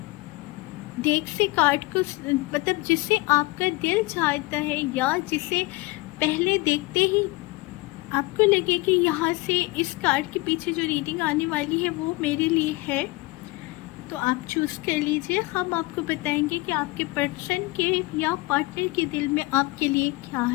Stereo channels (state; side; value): quieter; right; 23.0 dB